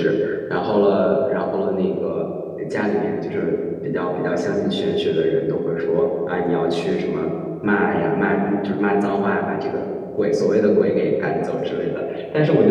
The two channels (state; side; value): identical; both; correlation 1.00